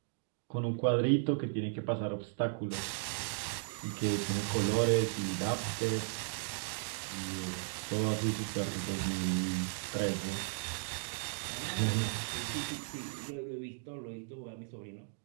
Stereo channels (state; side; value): silent; left; digital silence